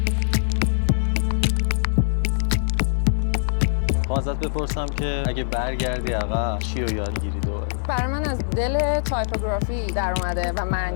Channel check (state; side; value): silent; right; digital silence